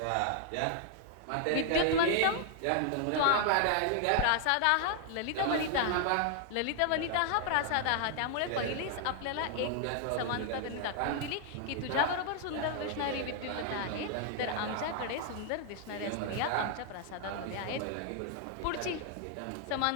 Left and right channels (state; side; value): different; both; correlation 0.00